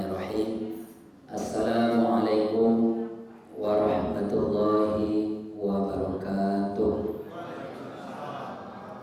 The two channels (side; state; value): both; identical; correlation 1.00